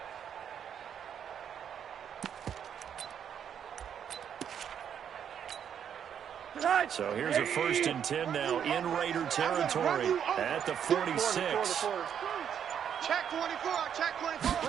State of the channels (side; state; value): left; quieter; 8.5 dB